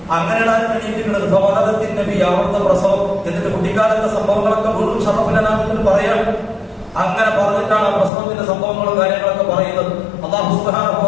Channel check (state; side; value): drops out; right; at 8.1 s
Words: അങ്ങനെയാണ് എണീറ്റിട്ടുള്ളത്. ഫവലദത്തിൻ നബി, അവിടുത്തെ പ്രസവം. എന്നിട്ട് കുട്ടിക്കാലത്തെ സംഭവങ്ങളൊക്കെ വീണ്ടും ഷറഫുലനാമിൽ പറയാം. അങ്ങനെ പറഞ്ഞിട്ടാണ് ആ പ്രസവത്തിന്റെ സംഭവങ്ങളും കാര്യങ്ങളൊക്കെ പറയുന്നത്. അല്ലാഹു സുബ്ഹാനഹു വ